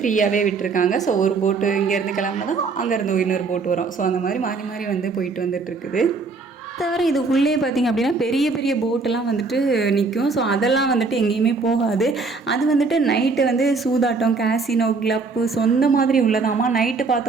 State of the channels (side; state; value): left; quieter; 4.2 dB